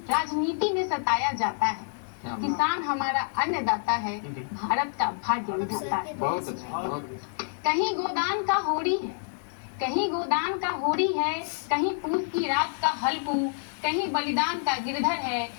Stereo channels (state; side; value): silent; right; digital silence